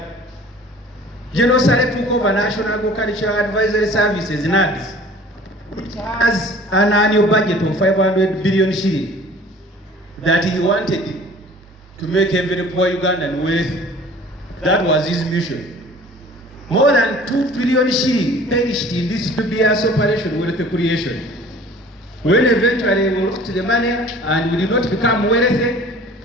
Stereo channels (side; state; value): both; normal; correlation 0.48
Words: General Saleh took over National Agricultural Advisory Services, NADS, which has an annual budget of 500 billion shilling that he wanted to make every poor Ugandan wealthy. That was his mission. More than 2 trillion shilling perished in this 2 years operation wealth creation. When eventually we looked at the money and we did not become wealthy,